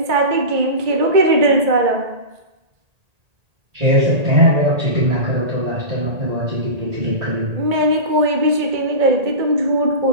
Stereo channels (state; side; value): late; left; 1.8 ms